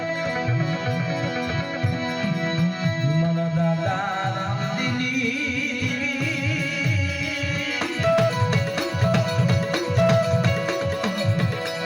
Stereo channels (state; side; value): identical; both; correlation 1.00